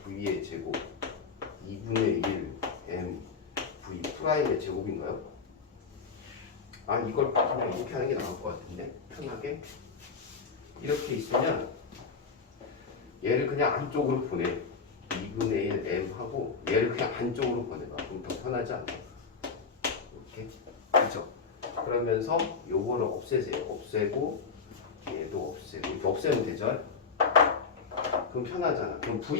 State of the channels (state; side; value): quieter; right; 5.2 dB